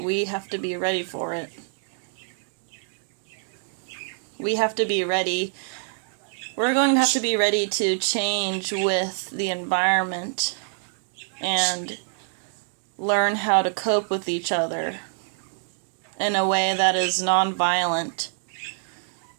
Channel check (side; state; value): left; silent; digital silence